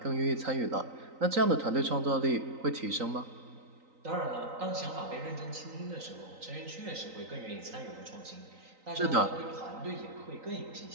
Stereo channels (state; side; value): late; left; 3.9 ms